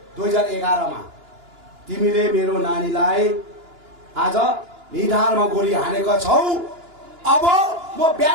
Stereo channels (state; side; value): late; left; 2.9 ms